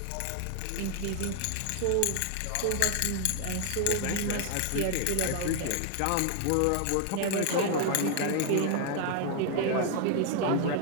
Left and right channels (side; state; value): both; different; correlation 0.00